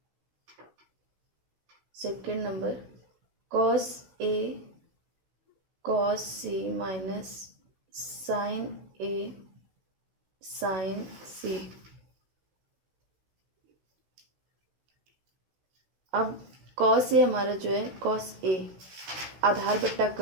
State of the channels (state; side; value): late; left; 16 ms